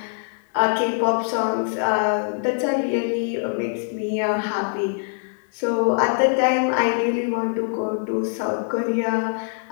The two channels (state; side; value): silent; right; 57 dB below the other